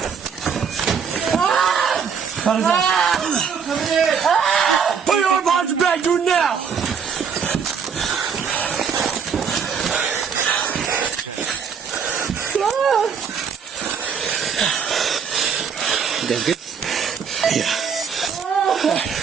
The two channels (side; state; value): left; quieter; 6.7 dB